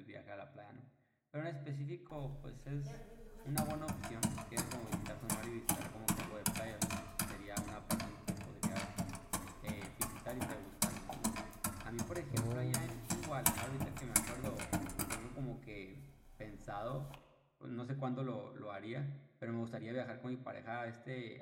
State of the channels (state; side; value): identical; both; correlation 1.00